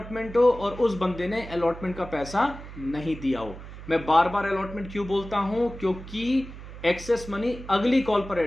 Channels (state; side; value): noise; right; hum, 13 dB below the sound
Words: हो और उस बंदे ने अलॉटमेंट का पैसा नहीं दिया हो। मैं बार बार अलॉटमेंट क्यों बोलता हूं, क्योंकि एक्सेस मनी अगली कॉल पर